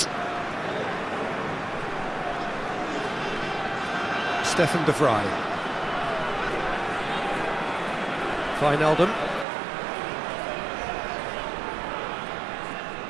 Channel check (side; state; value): left; drops out; at 9.5 s